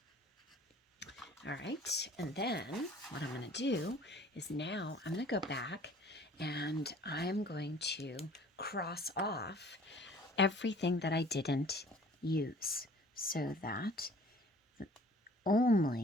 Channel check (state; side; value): normal; both; correlation 0.51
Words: All right, and then what I'm going to do is now I'm going to go back and I'm going to cross off everything that I didn't use so that